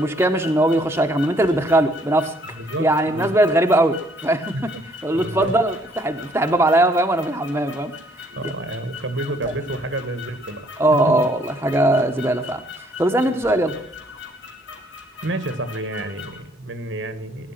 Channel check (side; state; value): both; normal; correlation 0.64